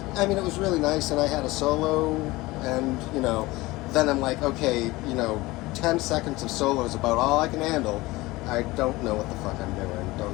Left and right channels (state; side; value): quieter; right; 20.4 dB